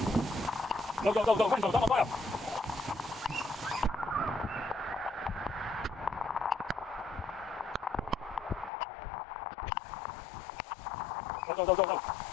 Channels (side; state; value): right; drops out; at 8.7 s